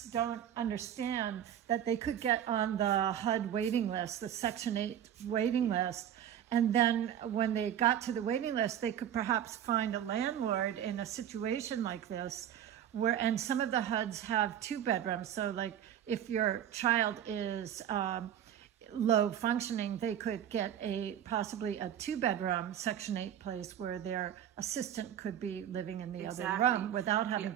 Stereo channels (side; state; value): left; quieter; 10.1 dB